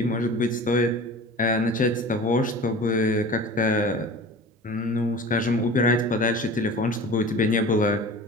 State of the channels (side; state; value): both; normal; correlation 0.38